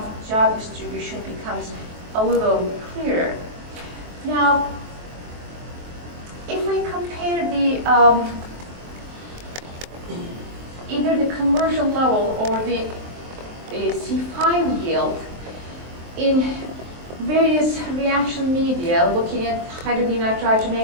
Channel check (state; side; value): late; left; 23 ms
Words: distribution becomes a little clearer. Now, if we compare the either the conversion level or the C5 yield in various reaction media, looking at